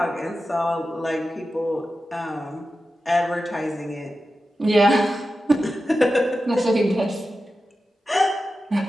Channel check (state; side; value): normal; both; correlation 0.92